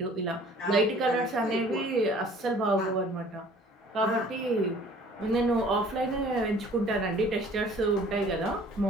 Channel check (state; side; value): normal; both; correlation 0.52